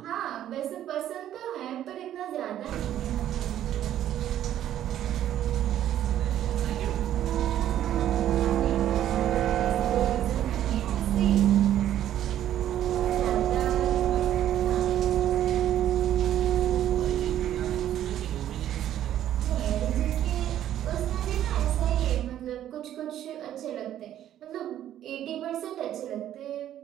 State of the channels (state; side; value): quieter; left; 11.6 dB